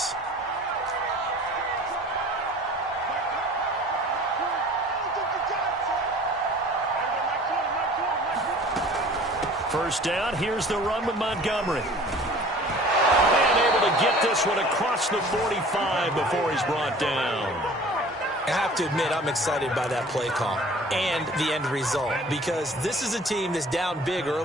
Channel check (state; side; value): normal; both; correlation 0.47